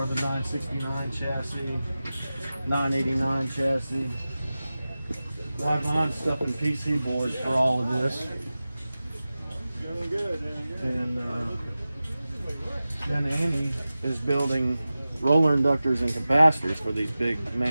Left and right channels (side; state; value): both; inverted; correlation -0.96